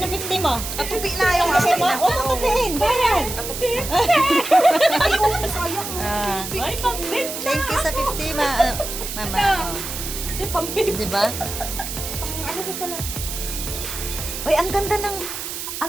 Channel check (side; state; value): right; noise; hiss, 6 dB below the sound